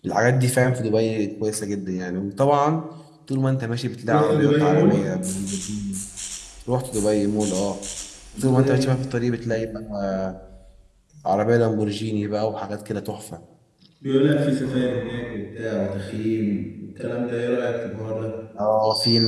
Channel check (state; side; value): identical; both; correlation 1.00